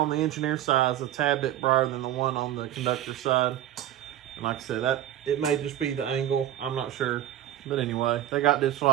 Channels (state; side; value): quieter; left; 12.1 dB